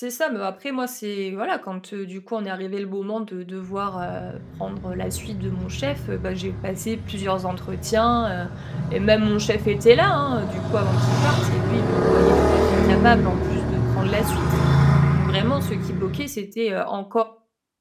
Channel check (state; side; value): identical; both; correlation 1.00